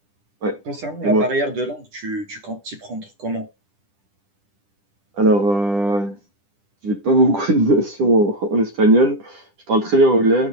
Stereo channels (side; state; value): left; late; 10 ms